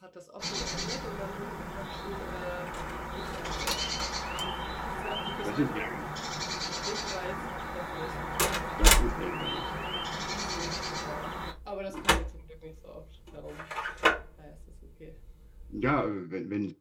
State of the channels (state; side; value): identical; both; correlation 1.00